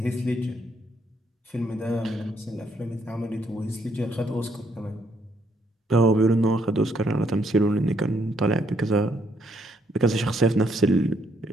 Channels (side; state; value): both; normal; correlation 0.71